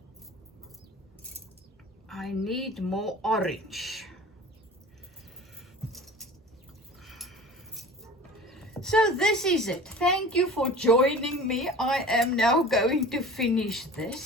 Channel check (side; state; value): both; normal; correlation 0.40